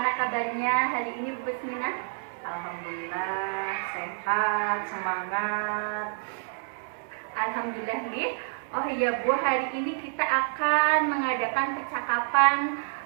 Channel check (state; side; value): silent; left; digital silence